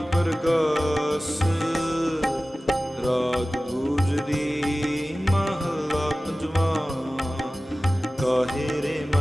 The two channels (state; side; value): normal; both; correlation 0.96